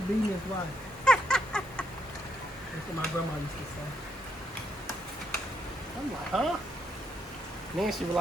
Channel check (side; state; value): both; normal; correlation 0.75